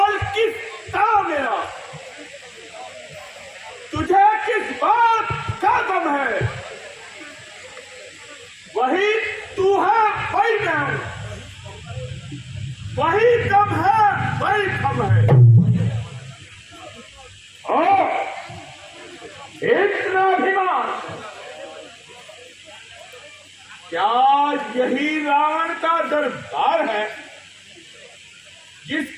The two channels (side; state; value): both; identical; correlation 1.00